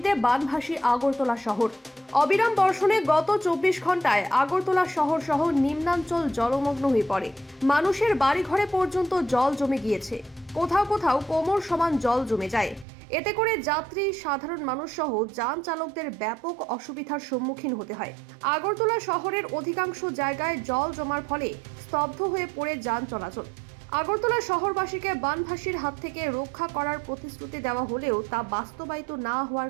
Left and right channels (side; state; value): left; drops out; at 12.9 s